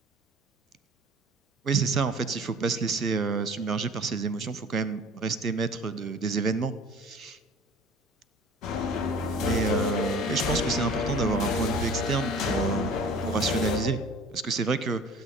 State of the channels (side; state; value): both; normal; correlation 0.46